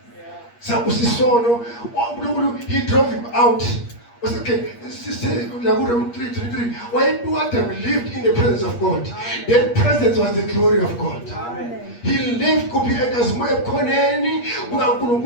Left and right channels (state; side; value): late; right; 8.5 ms